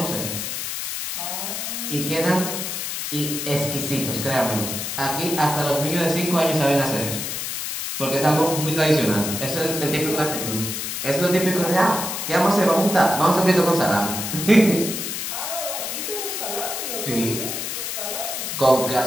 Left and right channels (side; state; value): left; noise; hiss, 4 dB below the sound